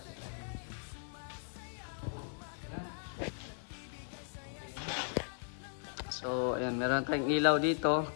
So, ayan, meron tayong ilaw dito.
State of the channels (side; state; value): right; silent; 53 dB below the other